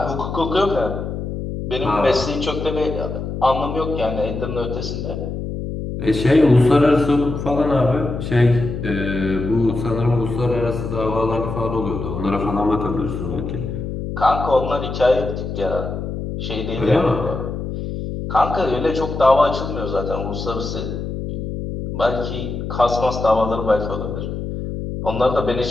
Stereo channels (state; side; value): noise; left; hum, 5 dB below the sound